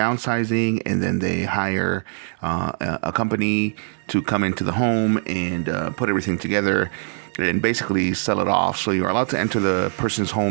and then they hire a company to come into the home and put everything together and basically sell it off. So you're allowed to enter the person's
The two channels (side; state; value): left; silent; digital silence